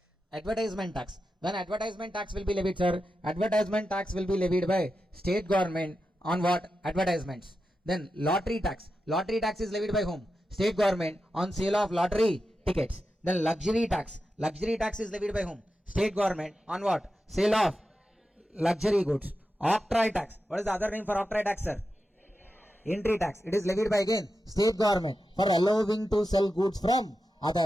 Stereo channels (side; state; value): both; normal; correlation 0.90